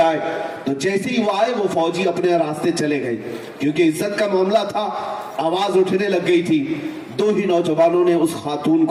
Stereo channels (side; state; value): both; identical; correlation 1.00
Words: آئے، تو جیسے ہی وہ آئے وہ فوجی اپنے راستے چلے گئے، کیونکہ عزت کا معاملہ تھا، آواز اٹھنے لگ گئی تھی۔ 2 ہی نوجوانوں نے اس خاتون